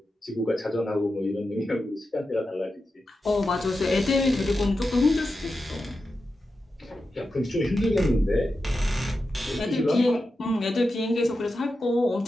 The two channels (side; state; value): both; normal; correlation 0.90